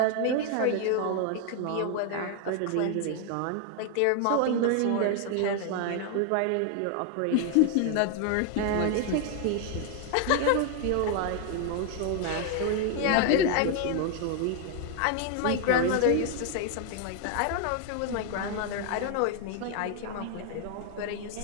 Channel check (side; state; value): both; different; correlation 0.00